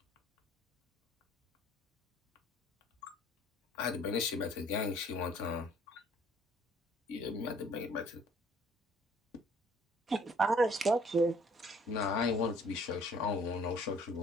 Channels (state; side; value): normal; both; correlation 0.57